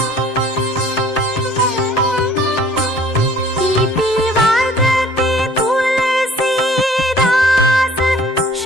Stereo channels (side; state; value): both; normal; correlation 0.53